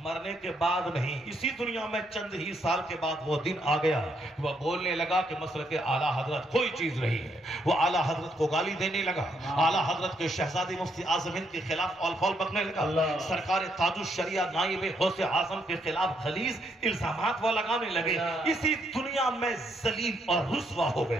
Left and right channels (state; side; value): normal; both; correlation 0.75